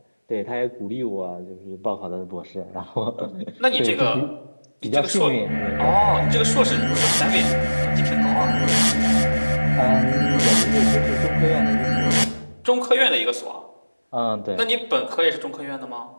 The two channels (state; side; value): inverted; both; correlation -1.00